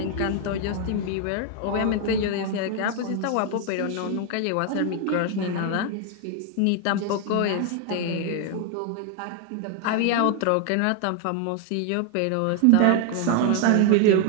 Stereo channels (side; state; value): both; different; correlation 0.00